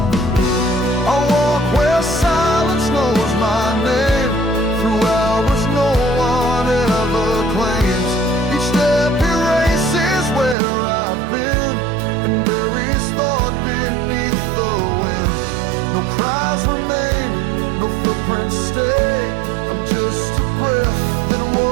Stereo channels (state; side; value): drops out; left; at 10.6 s